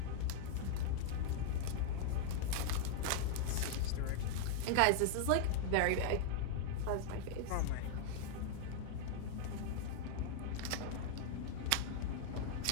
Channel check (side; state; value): both; different; correlation -0.01